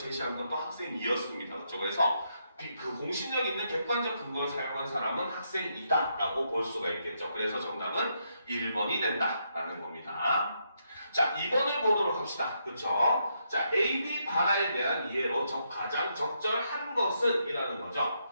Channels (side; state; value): both; inverted; correlation -0.79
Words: 것도 학생 2였습니다. 그렇죠? 그래서 그 공신력 있는 객관적 근거를 사용한 사람은 학생이다 라고 볼 수가 있겠죠. 그래서 정답은 1번이 된다라는 겁니다. 자, 2번을 보도록 합시다. 그쵸? 자, A, B 발화에 대한 이해로 가장 적절한 것은 이라는 거죠.